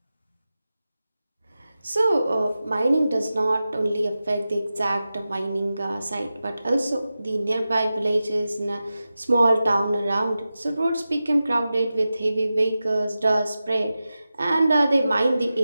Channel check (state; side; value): inverted; both; correlation -0.93